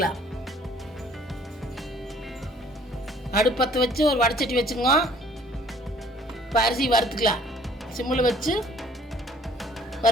அடுப்பத்தை வச்சு ஒரு வடைச்சட்டி வச்சுங்க. இப்போ அரிசி வறுத்துக்கலாம். சிம்மில் வச்சு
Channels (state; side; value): normal; both; correlation 0.56